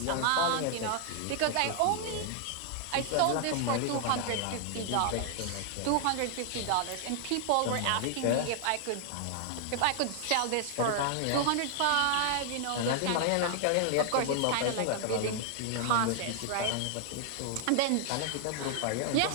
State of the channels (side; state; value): both; different; correlation 0.00